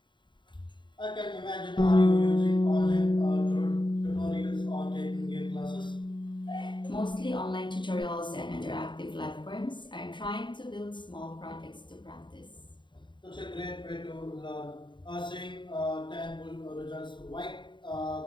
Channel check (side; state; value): right; late; 0.23 ms